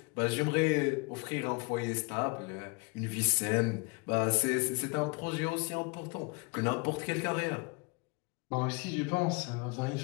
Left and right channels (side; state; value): right; quieter; 29.7 dB